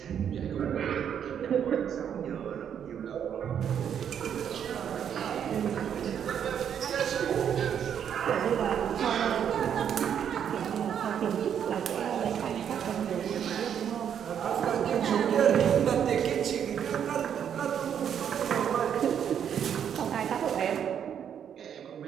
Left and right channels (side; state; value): left; quieter; 8.7 dB